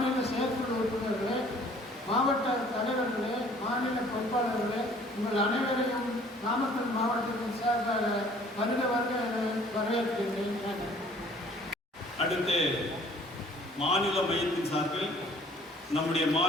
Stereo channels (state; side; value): normal; both; correlation 0.55